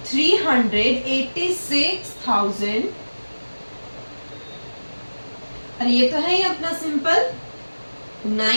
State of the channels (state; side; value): inverted; both; correlation -1.00